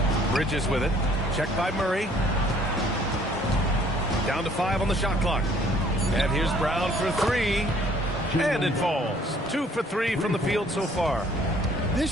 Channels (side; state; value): both; normal; correlation 0.59